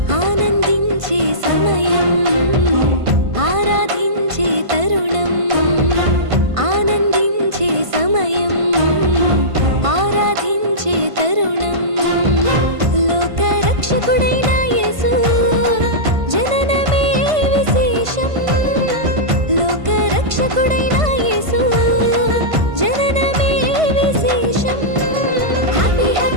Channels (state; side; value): late; left; 1.5 ms